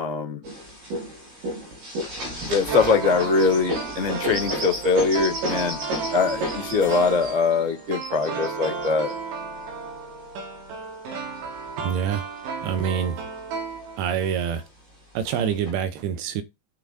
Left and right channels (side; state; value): left; late; 16 ms